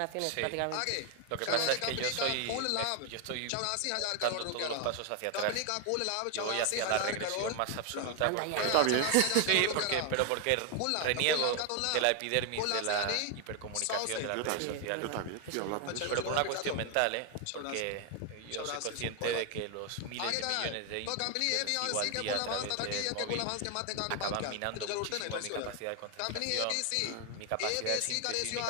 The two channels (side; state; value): both; different; correlation 0.00